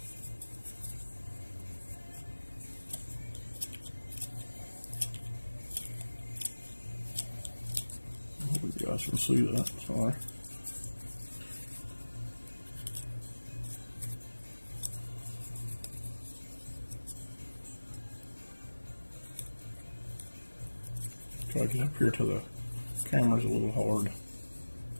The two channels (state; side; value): inverted; both; correlation -1.00